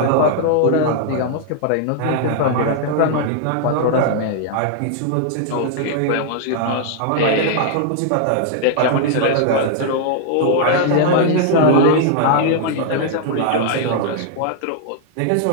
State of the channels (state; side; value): different; both; correlation -0.01